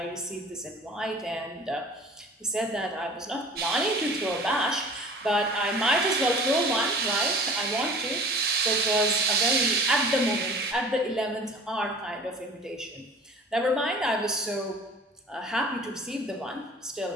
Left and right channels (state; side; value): normal; both; correlation 0.44